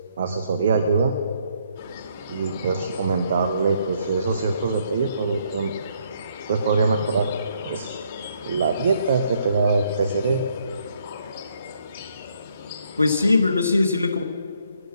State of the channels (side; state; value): both; inverted; correlation -0.70